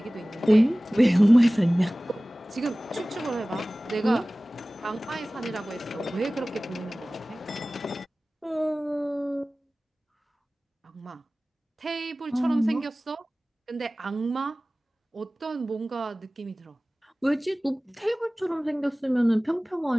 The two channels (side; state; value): both; normal; correlation 0.98